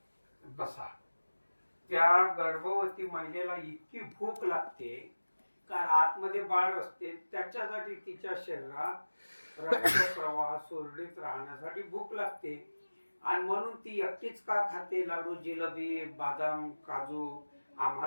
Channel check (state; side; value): inverted; both; correlation -1.00